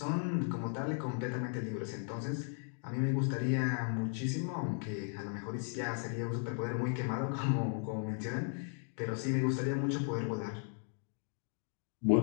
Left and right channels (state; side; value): silent; right; 53 dB below the other